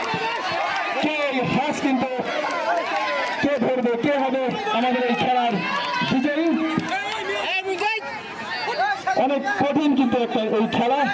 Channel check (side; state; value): both; identical; correlation 1.00